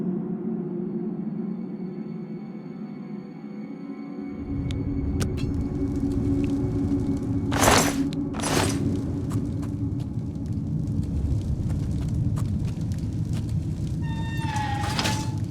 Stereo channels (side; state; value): both; identical; correlation 1.00